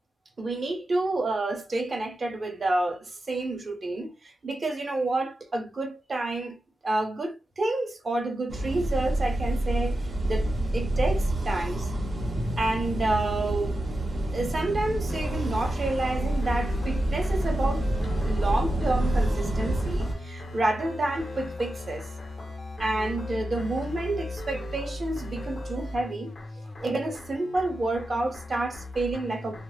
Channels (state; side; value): normal; both; correlation 0.90